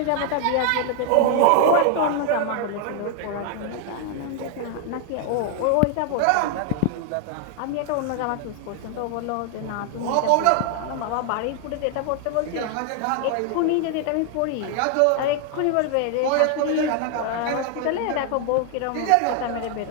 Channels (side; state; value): both; different; correlation 0.00